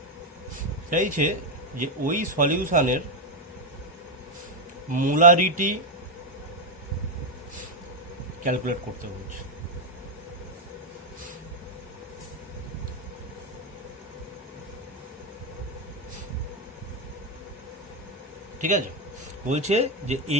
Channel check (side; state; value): both; normal; correlation 0.05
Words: চাইছে যে ওই সলিউশনের মোলারিটি ক্যালকুলেট করতে বলছে। ঠিক আছে, বলছে যে